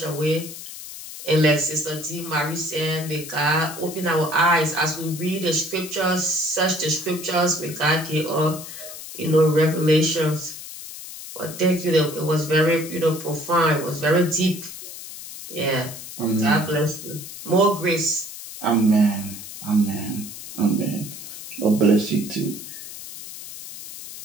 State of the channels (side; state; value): left; noise; hiss, 12 dB below the sound